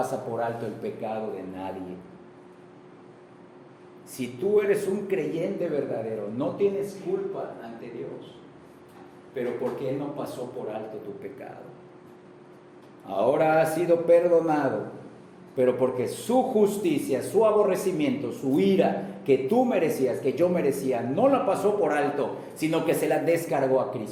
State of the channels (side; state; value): both; identical; correlation 1.00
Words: por alto el pecado de nadie. Si tú eres un creyente verdadero, no tienes culpa ante Dios, pero porque Él no pasó por alto tu pecado. Ahora has sido perdonado, pero porque su justicia, su aborrecimiento, su ira que tú merecías, que yo merecía, no la pasó por alto, sino que se la descargó a